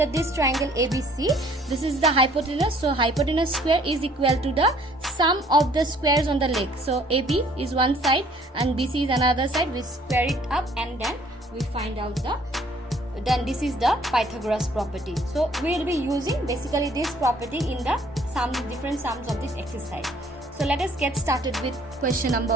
this triangle ABC, this is the hypotenuse. So hypotenuse square is equal to the sum of the squares on the legs. So AB is one side and BC is another side. We square it up, and then we find out then this is the Pythagoras property. So we will be using basically this property in the different sums of this exercise. So let us get started with question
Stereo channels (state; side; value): normal; both; correlation 0.59